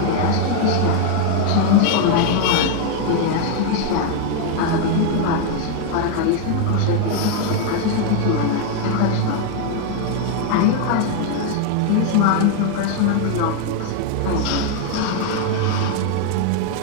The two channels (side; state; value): both; different; correlation 0.01